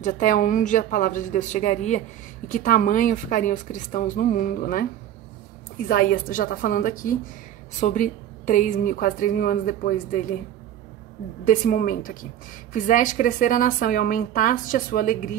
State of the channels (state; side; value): quieter; left; 11.2 dB